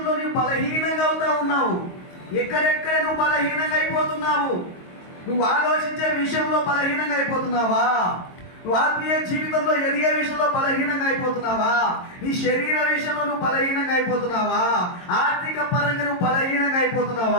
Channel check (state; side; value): late; right; 22 ms